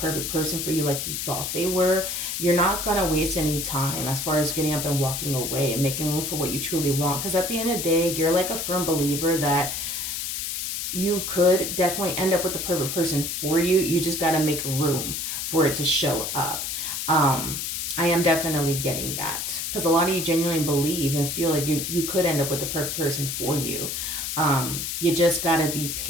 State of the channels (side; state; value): left; noise; hiss, 3 dB below the sound